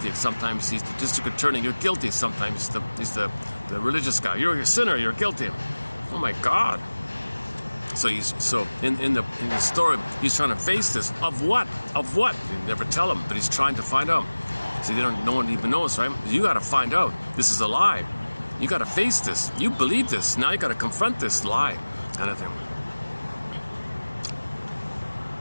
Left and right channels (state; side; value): inverted; both; correlation -1.00